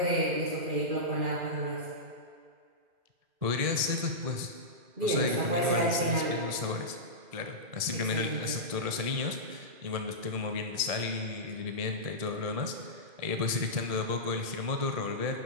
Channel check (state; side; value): late; left; 2.4 ms